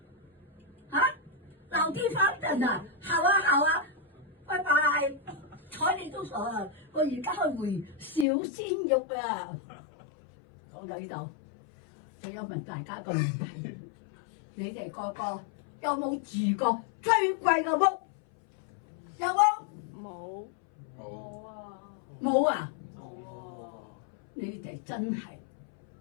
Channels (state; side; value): drops out; right; at 8.2 s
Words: 啊，老地方等啊，好啊，拜拜。睬你都傻啊！我而家去回小鮮肉啊！講到呢度，我有問大家個問題：你哋個個有冇住過最貴嘅屋？有冇？冇啊！冇啊！你哋真係